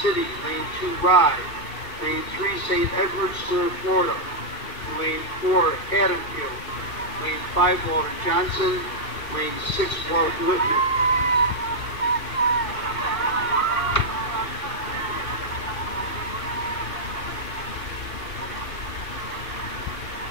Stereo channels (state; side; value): late; right; 2.6 ms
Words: City. Lane 2, Rye. Lane 3, St. Edward's, Florida. Lane 4, Haddonfield. Lane 5, Walter Johnson. Lane 6, Walt Whitman.